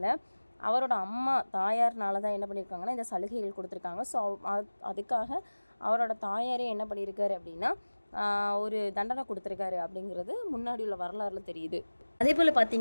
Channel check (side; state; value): both; inverted; correlation -1.00